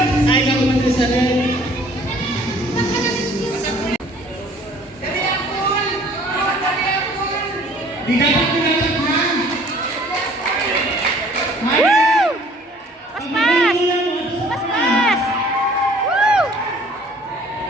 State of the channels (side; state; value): both; normal; correlation 0.54